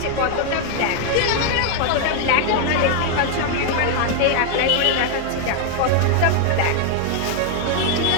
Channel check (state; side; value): different; both; correlation 0.00